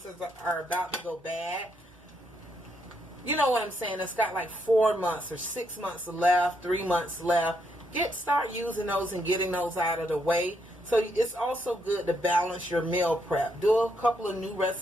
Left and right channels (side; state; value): both; normal; correlation 0.76